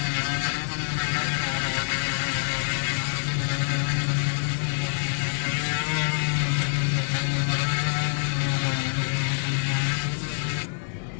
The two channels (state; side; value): silent; right; digital silence